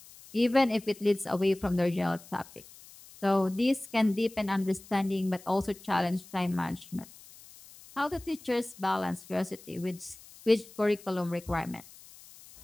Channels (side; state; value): left; noise; hiss, 21 dB below the sound